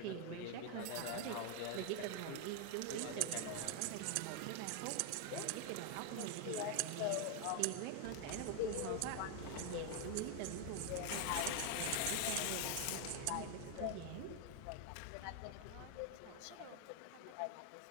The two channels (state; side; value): different; both; correlation 0.01